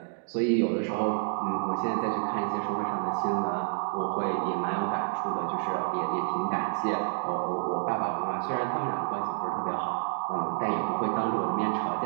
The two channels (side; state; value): left; silent; digital silence